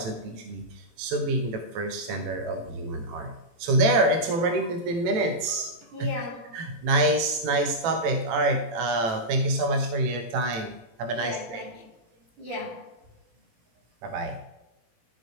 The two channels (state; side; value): late; left; 17 ms